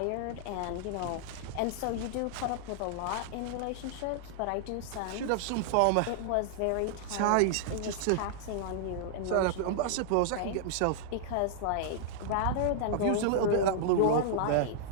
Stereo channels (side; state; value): both; different; correlation -0.01